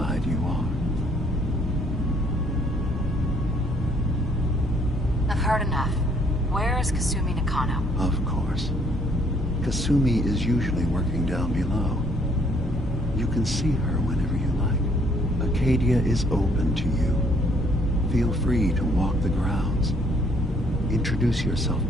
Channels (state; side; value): normal; both; correlation 0.65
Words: you are. I've heard enough. Where is Kasumi Nakano? Of course. Kasumi is usually working down below. You can see her whenever you like. Acadia is open to you. Feel free to walk the grounds. Introduce yourself